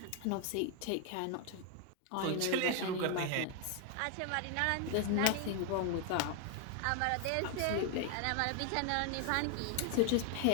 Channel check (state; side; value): different; both; correlation 0.00